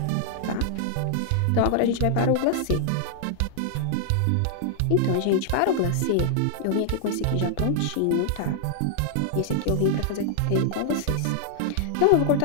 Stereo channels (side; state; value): both; different; correlation -0.01